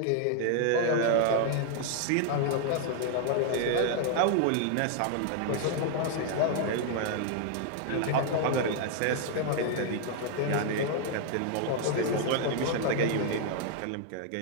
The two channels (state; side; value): different; both; correlation 0.00